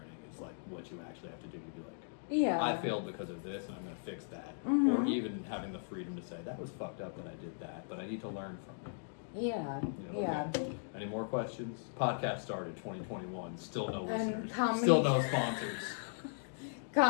Is, like, what you actually have to do to be like... Yeah. I failed because of this, and I'm going to fix that. Or even having the freedom to say, that was fucked up that I did that, but I need to learn from it. Yeah. You know, Yeah. okay. Any more questions? Podcast started 2021. Still no And listeners. comedy- Still no sponsors.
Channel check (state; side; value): silent; right; digital silence